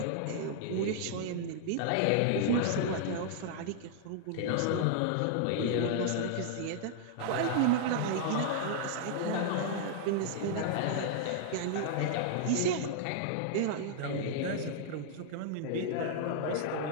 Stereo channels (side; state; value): both; different; correlation -0.01